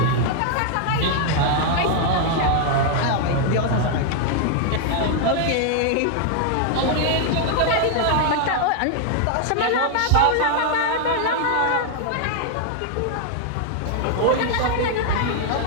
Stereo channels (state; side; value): different; both; correlation 0.00